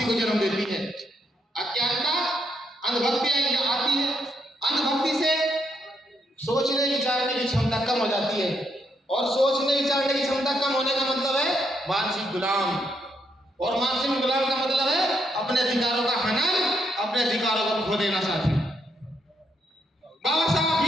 को जन्म देती है। अज्ञानता अंधभक्ति आती है। अंधभक्ति से सोचने विचारने की क्षमता कम हो जाती है, और सोचने विचारने की क्षमता कम होने का मतलब है मानसिक गुलाम, और मानसिक गुलाम का मतलब है अपने अधिकारों का हनन, अपने अधिकारों को खो देना। साथी, बाबा साहब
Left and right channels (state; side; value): normal; both; correlation 0.77